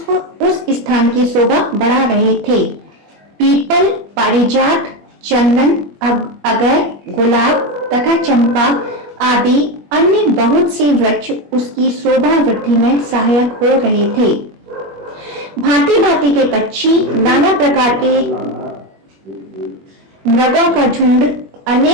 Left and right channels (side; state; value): left; late; 21 ms